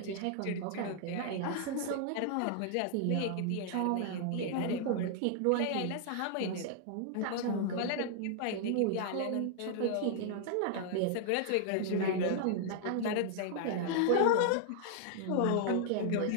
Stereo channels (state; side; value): different; both; correlation 0.00